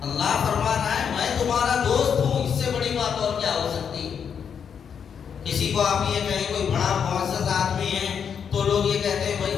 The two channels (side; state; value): right; quieter; 7.3 dB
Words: اللہ فرما رہا ہے میں تمہارا دوست ہوں، اس سے بڑی بات اور کیا ہو سکتی ہے؟ کسی کو آپ یہ کہیں کوئی بڑا معزز آدمی ہے تو لوگ یہ کہتے ہیں بھائی